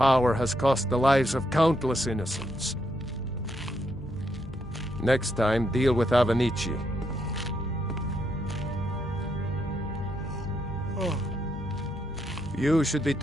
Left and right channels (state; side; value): normal; both; correlation 0.78